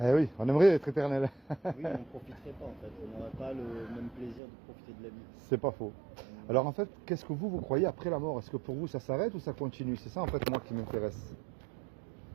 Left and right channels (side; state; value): left; drops out; at 4.4 s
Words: Eh oui, on aimerait être éternel. oui on ne profiterait pas en fait. On n'aurait pas le même plaisir de profiter de la vie. C'est pas faux. Alors en fait, qu'est-ce que vous croyez après la mort? Est-ce que pour vous ça s'arrête ou ça continue? C'est ça en fait moi qui m'intéresse.